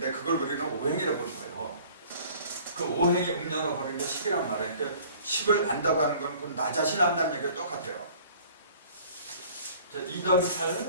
그걸 우리는 오행이라고 보는 거예요. 그 오행이 음량으로 버리는 게 10이란 말이에요. 그러니까 10을 안다고 하는 건 나 자신 안다는 얘기가 똑같아요. 자, 2 더하기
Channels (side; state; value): both; inverted; correlation -0.50